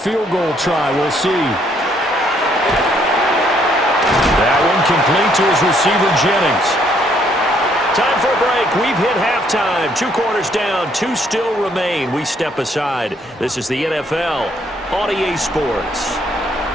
goal try. We'll see. That one complete to his receiver, Jennings. Time for a break. We've hit halftime. 2 quarters down. 2 still remain. We step aside. This is the NFL on EA Sports.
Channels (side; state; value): both; normal; correlation 0.68